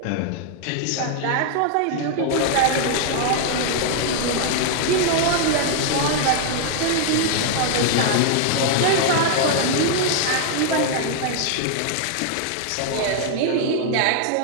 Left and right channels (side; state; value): both; different; correlation 0.00